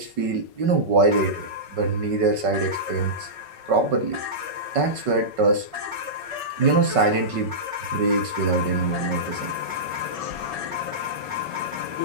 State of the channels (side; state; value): left; late; 5.3 ms